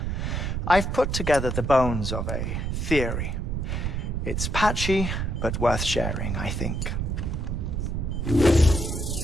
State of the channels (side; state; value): right; noise; rumble, 1 dB below the sound